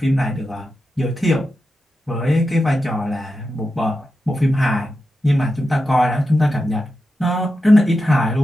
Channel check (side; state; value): both; normal; correlation 0.90